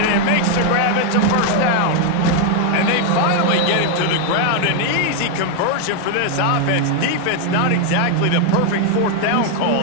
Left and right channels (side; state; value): both; different; correlation 0.01